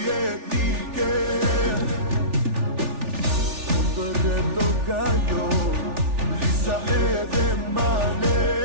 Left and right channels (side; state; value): left; late; 3.4 ms